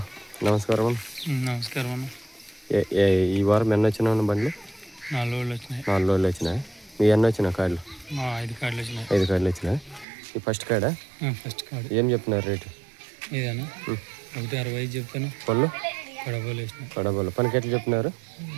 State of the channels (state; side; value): drops out; left; at 10.1 s